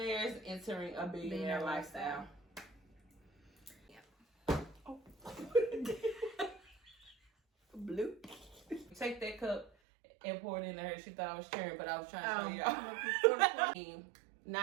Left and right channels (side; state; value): left; drops out; at 9.7 s